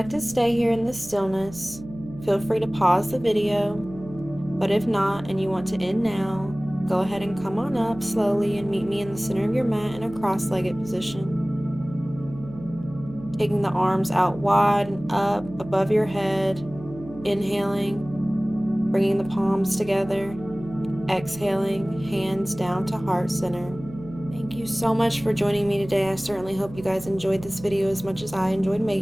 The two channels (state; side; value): noise; right; hum, 16 dB below the sound